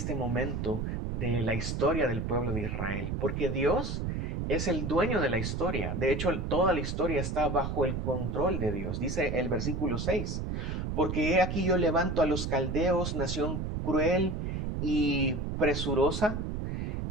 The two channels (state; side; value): noise; right; rumble, 2 dB below the sound